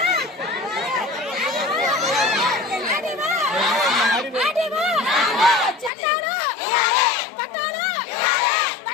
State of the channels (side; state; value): right; drops out; at 5.9 s